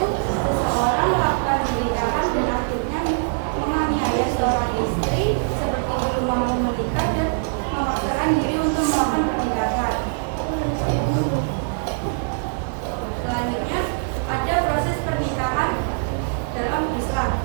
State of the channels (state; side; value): silent; left; 64 dB below the other